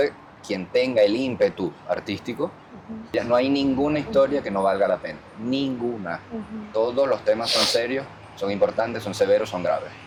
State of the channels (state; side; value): identical; both; correlation 1.00